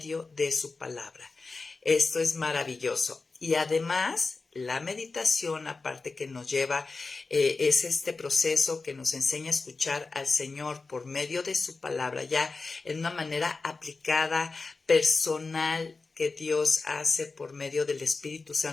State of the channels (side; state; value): right; quieter; 4.0 dB